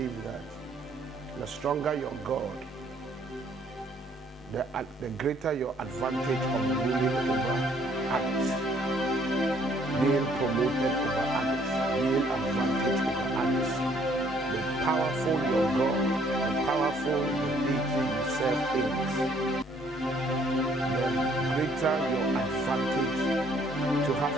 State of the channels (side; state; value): both; normal; correlation 0.63